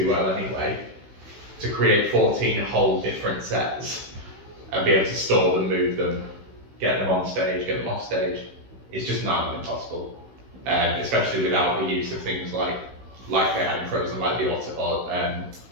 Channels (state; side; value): late; left; 16 ms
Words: well anyway, to create 14 whole different sets and be able to store them, move them, get them on stage, get them off stage, it's just not impossible. Especially without the use of things like they had in Frozen, like the